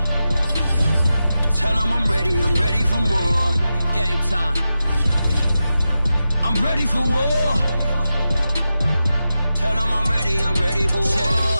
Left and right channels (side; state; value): both; inverted; correlation -0.90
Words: Tell them I'm ready for more. Game time. I'm ready for war. Tell them I'm ready for war.